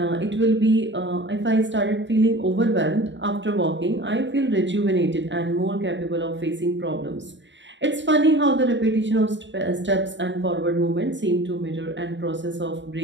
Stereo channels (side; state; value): left; late; 0.53 ms